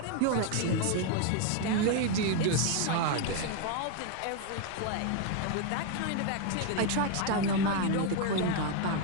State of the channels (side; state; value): both; different; correlation 0.01